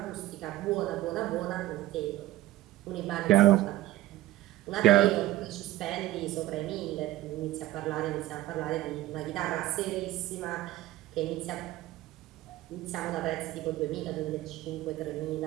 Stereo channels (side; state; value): left; quieter; 15.7 dB